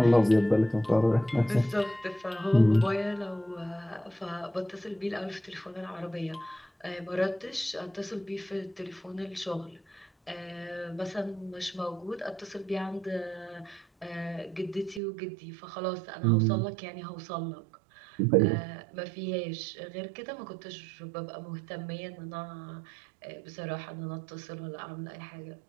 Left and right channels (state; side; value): drops out; left; at 15.0 s